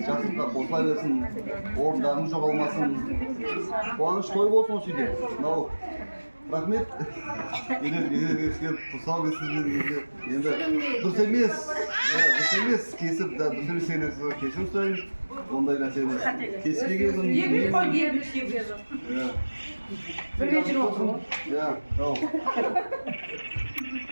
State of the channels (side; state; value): both; inverted; correlation -1.00